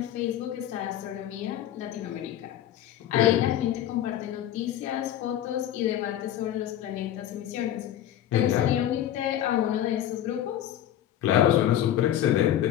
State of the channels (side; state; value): right; quieter; 11.7 dB